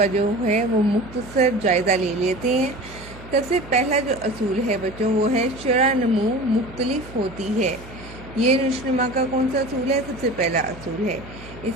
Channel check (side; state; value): right; noise; hum, 17 dB below the sound